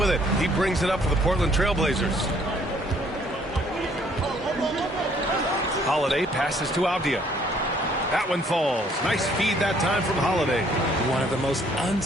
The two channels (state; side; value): normal; both; correlation 0.62